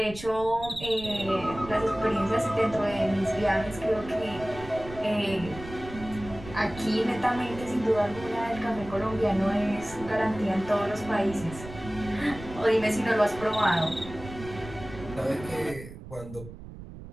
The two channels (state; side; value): noise; right; rumble, 14 dB below the sound